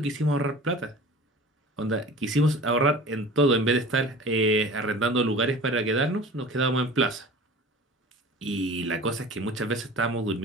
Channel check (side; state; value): both; normal; correlation 0.40